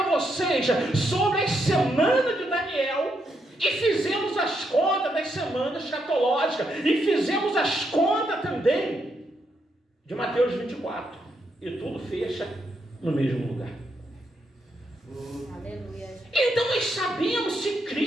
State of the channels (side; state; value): both; normal; correlation 0.79